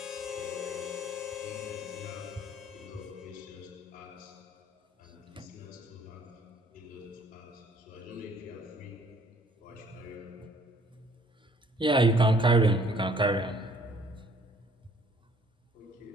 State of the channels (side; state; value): both; normal; correlation 0.59